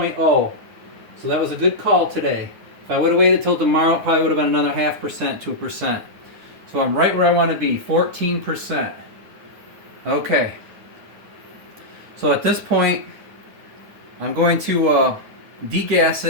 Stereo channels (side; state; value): left; late; 9.9 ms